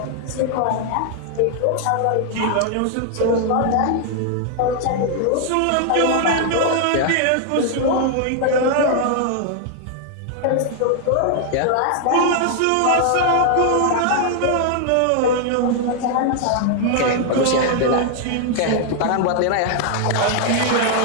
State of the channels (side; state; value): both; different; correlation 0.00